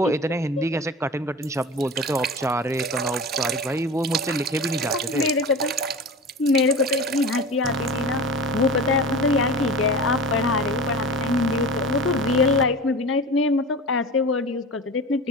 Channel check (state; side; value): normal; both; correlation 0.33